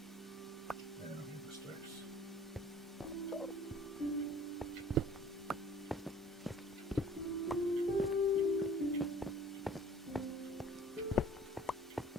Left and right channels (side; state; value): both; normal; correlation 0.51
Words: I don't need the sticks.